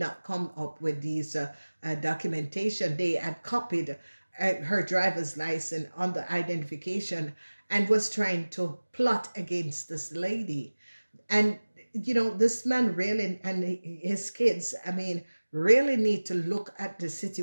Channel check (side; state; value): both; inverted; correlation -1.00